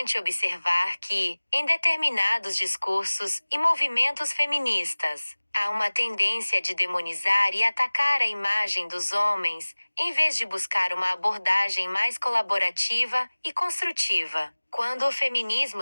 observar que, em determinados discursos e movimentos feministas, há uma tendência de demonizar e atacar a imagem dos homens, em vez de buscar uma abordagem mais colaborativa e construtiva. Quando o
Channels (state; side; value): inverted; both; correlation -1.00